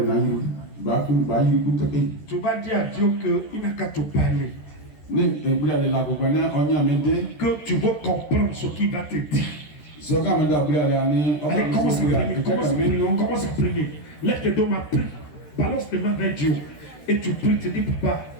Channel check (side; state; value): right; late; 13 ms